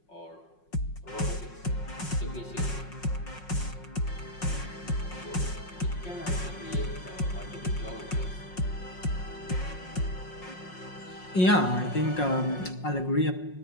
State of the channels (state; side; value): late; right; 5.5 ms